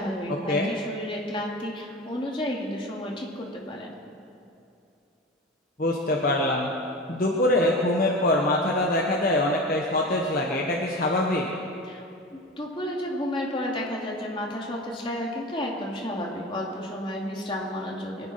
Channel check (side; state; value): both; normal; correlation 0.31